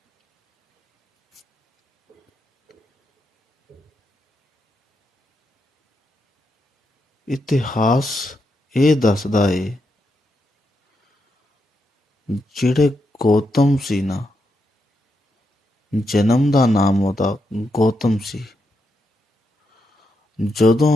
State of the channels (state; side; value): normal; both; correlation 0.83